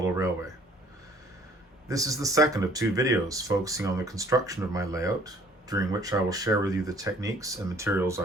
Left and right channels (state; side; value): normal; both; correlation 0.56